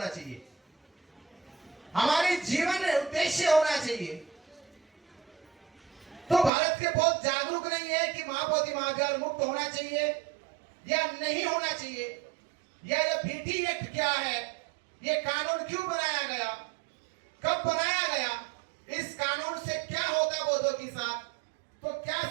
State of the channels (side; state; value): left; drops out; at 6.5 s